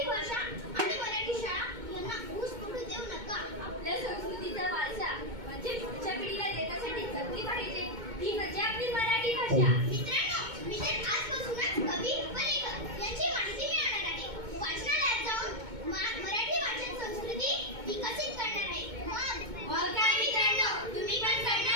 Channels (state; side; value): late; left; 2.2 ms